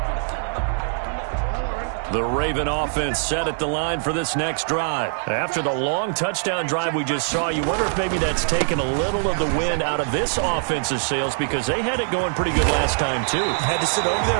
The Raven offense set at the line for this next drive. After the long touchdown drive we just saw, you wonder if maybe that's taken a little of the wind out of this offense's sails because they had it going pretty good last time, too. Had to sit over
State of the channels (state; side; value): silent; left; digital silence